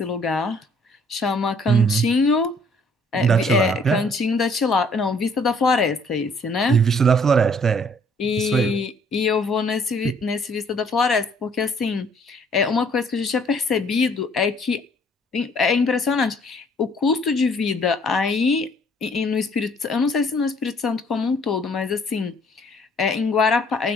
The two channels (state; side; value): normal; both; correlation 0.61